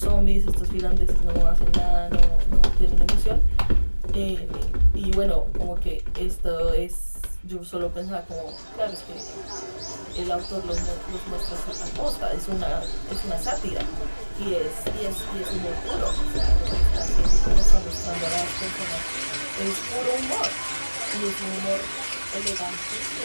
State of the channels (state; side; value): inverted; both; correlation -1.00